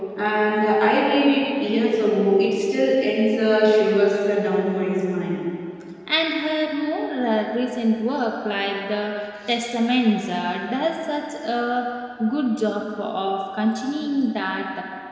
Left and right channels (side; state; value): both; identical; correlation 1.00